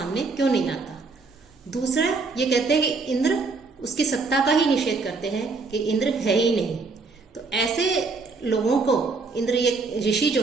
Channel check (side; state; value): left; quieter; 4.1 dB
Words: क्यों नहीं आता। दूसरा ये कहते हैं कि इंद्र, उसकी सत्ता का ही निषेध करते हैं कि इंद्र है ही नहीं। तो ऐसे लोगों को इंद्र, ये ऋषि जो